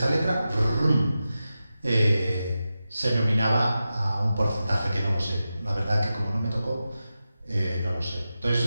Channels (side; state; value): both; inverted; correlation -0.92